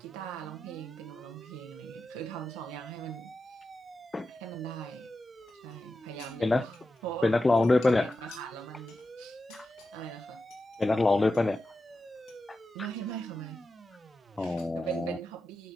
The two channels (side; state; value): both; normal; correlation 0.90